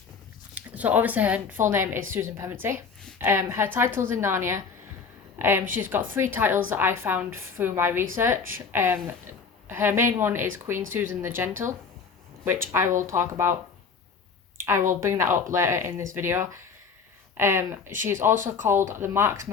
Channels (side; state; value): right; quieter; 5.5 dB